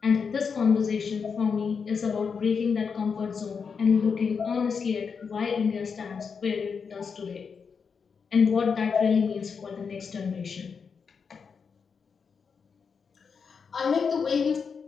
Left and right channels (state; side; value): quieter; right; 5.9 dB